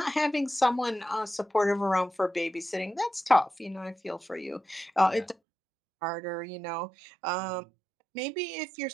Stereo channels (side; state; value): left; drops out; at 5.4 s